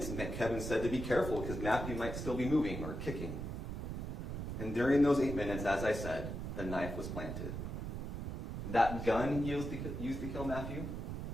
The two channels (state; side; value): noise; right; rumble, 5 dB below the sound